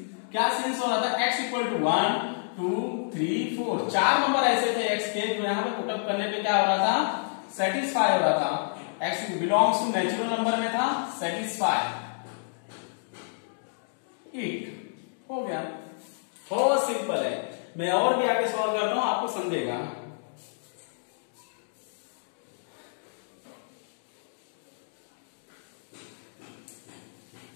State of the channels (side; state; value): right; silent; digital silence